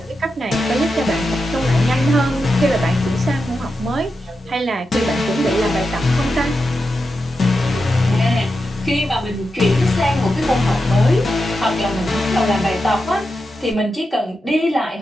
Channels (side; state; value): both; normal; correlation 0.89